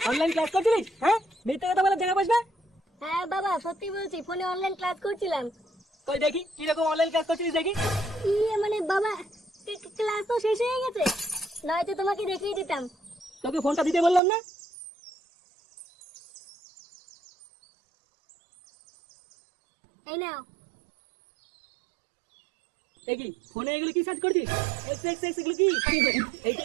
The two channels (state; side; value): drops out; left; at 14.2 s